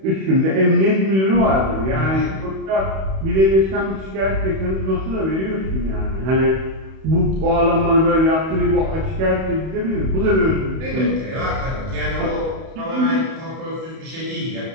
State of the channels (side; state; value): left; late; 31 ms